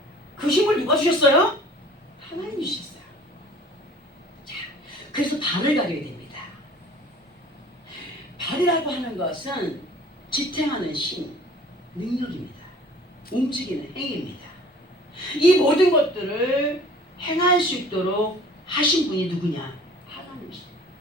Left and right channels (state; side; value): normal; both; correlation 0.49